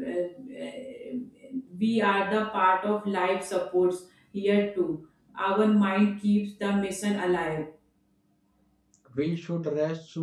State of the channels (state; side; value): identical; both; correlation 1.00